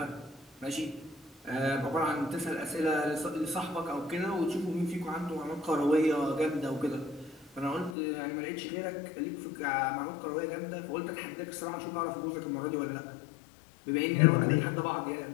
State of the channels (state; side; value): drops out; right; at 8.0 s